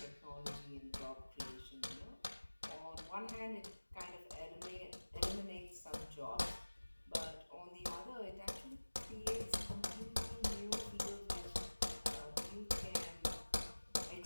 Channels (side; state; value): both; inverted; correlation -1.00